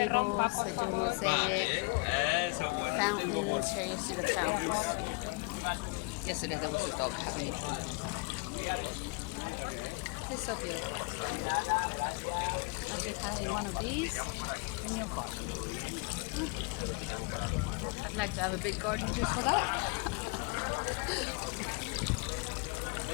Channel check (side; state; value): right; quieter; 29.8 dB